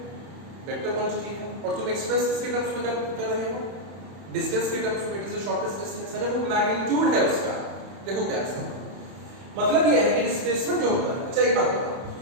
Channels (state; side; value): late; left; 31 ms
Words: क्वांटिटी है और तुम एक्सप्रेस इसके टर्म्स में कर रहे हो, डिस्टेंस के टर्म्स में। It is the shortest distance, अरे वो मैग्नीट्यूड है उसका। देखो क्या है मतलब ये है कि डिस्प्लेसमेंट जो होता है, अच्छा एक बात बताओ,